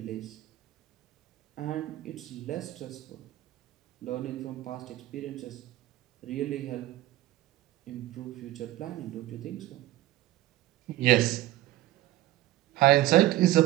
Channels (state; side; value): quieter; left; 15.8 dB